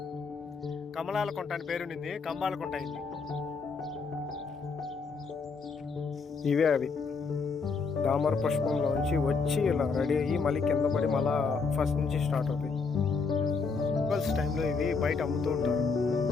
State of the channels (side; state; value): right; quieter; 4.8 dB